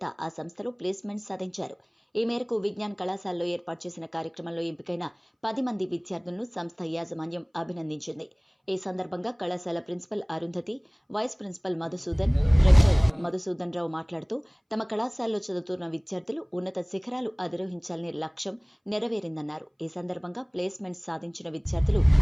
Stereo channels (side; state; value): both; identical; correlation 1.00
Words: ఆ సంస్థలో ప్లేస్మెంట్ సాధించారు. ఈ మేరకు విజ్ఞాన్ కళాశాలలో ఏర్పాటు చేసిన కార్యక్రమంలో ఎంపికైన 10 మంది విద్యార్థులను సంస్థ యాజమాన్యం అభినందించింది. ఈ సందర్భంగా కళాశాల principal Arundhati, vice principal Madhusudan, rector Madhusudan Rao మాట్లాడుతూ తమ కళాశాలలో చదువుతున్న విద్యార్థులు ఉన్నత శిఖరాలు అధిరోహించాలనే లక్ష్యం నెరవేరిందన్నారు. ఈ సందర్భంగా ప్లేస్మెంట్ సాధించిన విద్యార్థులు